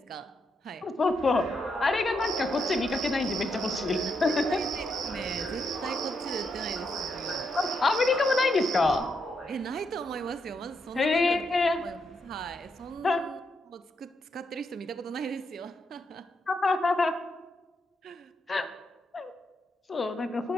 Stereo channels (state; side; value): normal; both; correlation 0.80